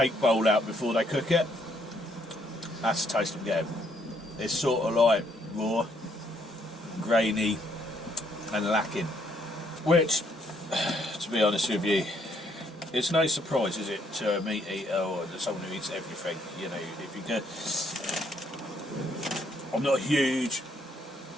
bowl out before they cook it? That's the taste I'm getting. It's sort of like raw, grainy and lacking. Which, to be honest with you, it's no surprise, is it, to a meat eater or to someone who eats everything. You know, if you go, I'm not a huge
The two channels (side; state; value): both; normal; correlation 0.70